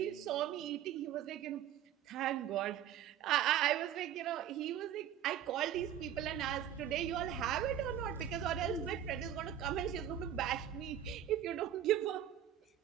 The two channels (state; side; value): quieter; left; 10.4 dB